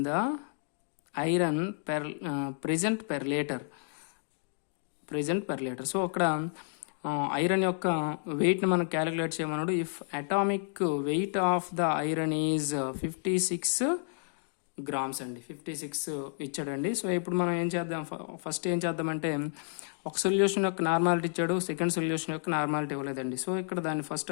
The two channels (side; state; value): right; silent; digital silence